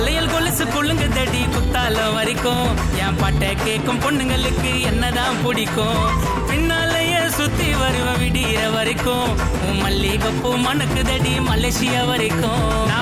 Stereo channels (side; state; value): both; identical; correlation 1.00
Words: கொலுசு குள்ளுங்க தடி குத்தாலம் வரைக்கும் என் பாட்டை கேட்கும் பொண்ணுங்களுக்கு என்னதான் பிடிக்கும். பின்னாலேயே சுத்தி வருவ விடிய வரைக்கும் உன் மல்லிகைப்பூ மணக்கு தடி மலேசியா வரைக்கும்.